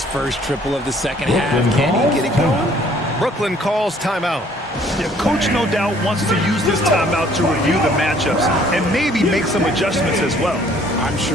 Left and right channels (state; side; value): normal; both; correlation 0.59